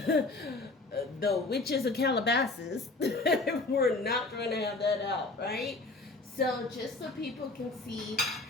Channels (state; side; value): quieter; right; 3.3 dB